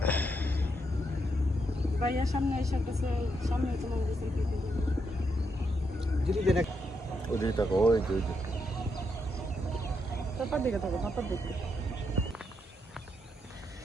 ভাইয়া সামনে এসে কাছে সামনে তোমার কাছে কি করবে? দিদি দেখ পাপার দিকে থাকো পাপার দিকে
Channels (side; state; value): both; normal; correlation 0.80